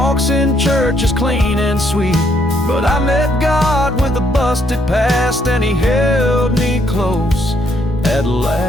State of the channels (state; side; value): normal; both; correlation 0.71